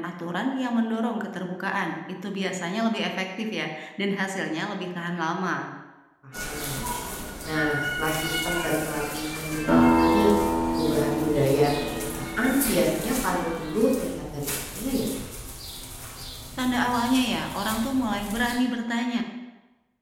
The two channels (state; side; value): identical; both; correlation 1.00